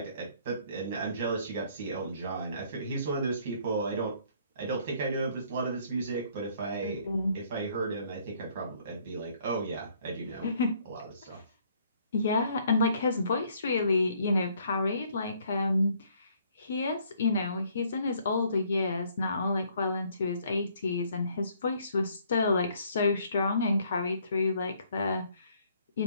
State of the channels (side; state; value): both; inverted; correlation -0.64